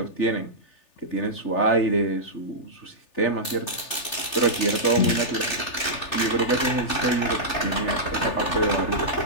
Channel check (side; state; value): right; late; 3.4 ms